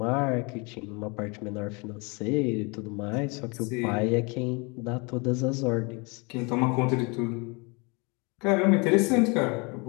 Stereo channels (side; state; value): right; quieter; 29.9 dB